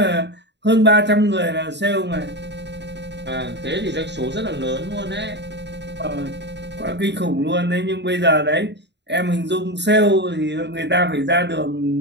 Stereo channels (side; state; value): left; late; 0.51 ms